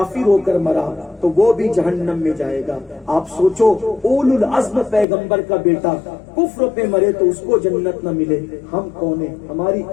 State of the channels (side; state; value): right; drops out; at 5.1 s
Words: ہو کر مرا تو وہ بھی جہنم میں جائے گا۔ آپ سوچو اولو العزم پیغمبر کا بیٹا کفر پہ مرے تو اس کو جنت نہ ملے، ہم کون ہیں؟ ہماری